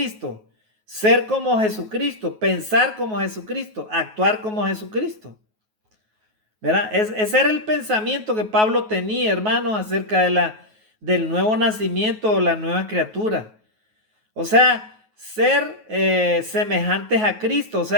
Ser como Jesucristo, pensar como Jesucristo, actuar como Jesucristo. ¿Verdad? Ese era el pensamiento que Pablo tenía, hermanos, acerca del nuevo nacimiento o la nueva criatura. O sea, ser semejantes a Cristo, o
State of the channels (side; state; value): left; late; 9.3 ms